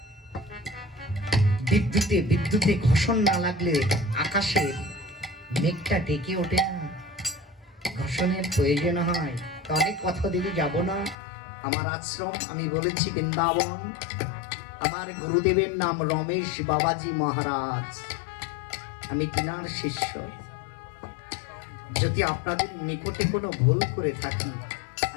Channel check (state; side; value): drops out; right; at 11.2 s